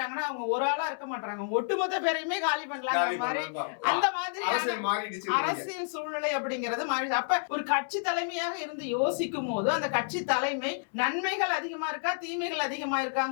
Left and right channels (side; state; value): right; silent; 58 dB below the other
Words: அவங்க ஒரு ஆளா இருக்க மாட்டாங்க, ஒட்டுமொத்த பேரையுமே காலி பண்ணலாம். அந்த மாதிரி அரசியல் சூழ்நிலை அப்படிங்கிறது மாறிடுச்சு. அப்ப ஒரு கட்சி தலைமையாக இருந்து யோசிக்கும் போது அந்த கட்சி தலைமை நன்மைகள் அதிகமா இருக்கா தீமைகள் அதிகமா